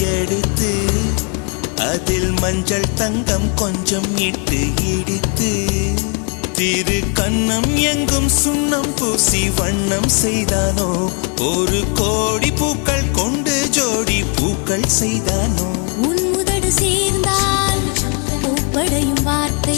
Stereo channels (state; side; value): quieter; right; 37.1 dB